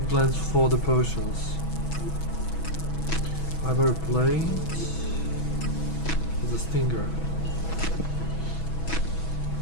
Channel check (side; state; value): right; late; 6.2 ms